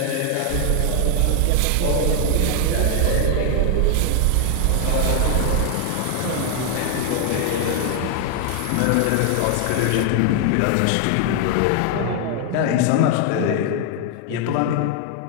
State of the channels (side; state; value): both; different; correlation 0.00